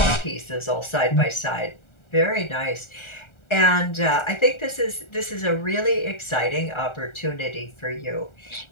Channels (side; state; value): right; late; 1.4 ms